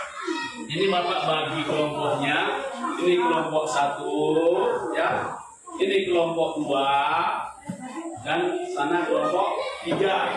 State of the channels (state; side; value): identical; both; correlation 1.00